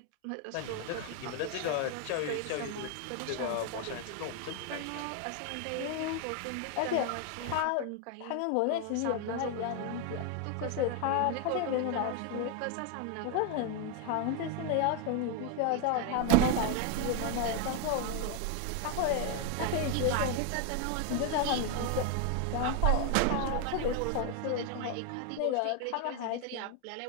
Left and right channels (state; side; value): different; both; correlation 0.01